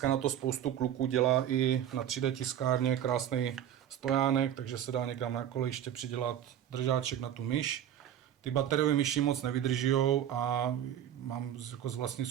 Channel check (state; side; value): quieter; left; 10.4 dB